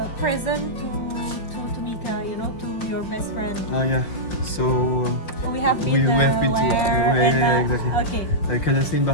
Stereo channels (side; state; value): right; late; 5.7 ms